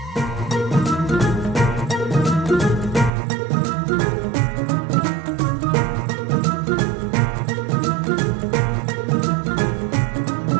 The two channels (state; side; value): drops out; left; at 3.1 s